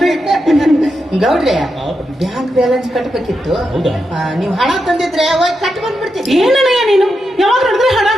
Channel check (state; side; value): normal; both; correlation 0.86